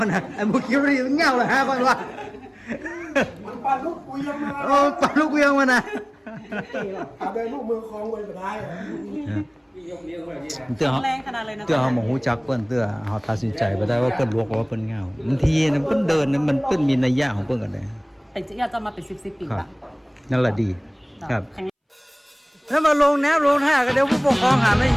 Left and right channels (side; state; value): both; identical; correlation 1.00